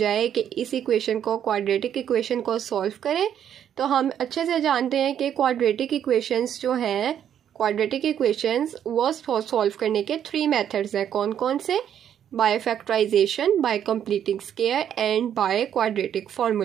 कि इस इक्वेशन को क्वाड्रेटिक इक्वेशन को सॉल्व करें, तो हम अच्छे से जानते हैं कि क्वाड्रेटिक इक्वेशंस जो हैं, क्वाड्रेटिक इक्वेशंस वो सॉल्व करने के 3 मेथड्स हैं। कौन कौन से? By factorisation, by completing square and by quadratic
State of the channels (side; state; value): left; quieter; 9.5 dB